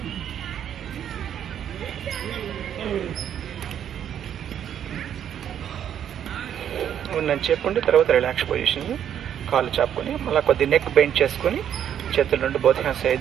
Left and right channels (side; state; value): left; quieter; 9.6 dB